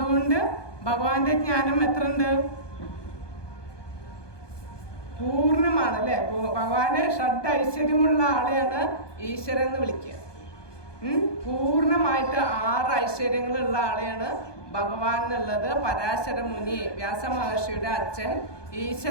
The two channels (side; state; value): right; late; 1.2 ms